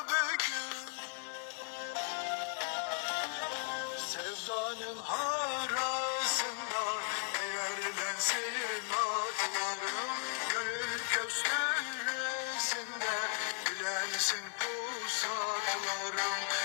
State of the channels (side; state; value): right; silent; 54 dB below the other